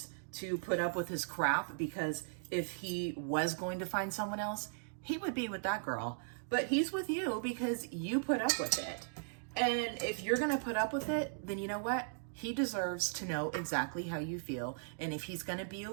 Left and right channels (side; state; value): left; silent; digital silence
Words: to put up with his crap, because if he was going to find someone else, he would be with that girl. But he's with you because you put up with it. And if you're going to put up with it, then you know what? He deserves to know exactly how you feel. And if he's going to be a